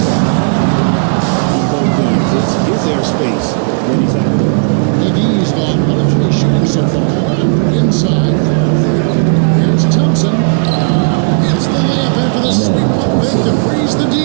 hone the rim on both ends. It's his airspace when he's out there. McGee's gone 1 of 3 shooting so far. Inside. Here's Thompson. Hits the layup after the sweet pump fake to freeze the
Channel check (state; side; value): silent; left; digital silence